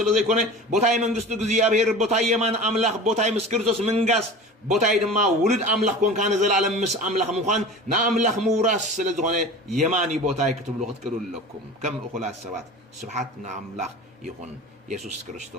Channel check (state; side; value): normal; both; correlation 0.36